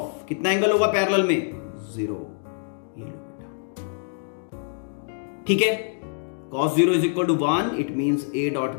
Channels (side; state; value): right; silent; digital silence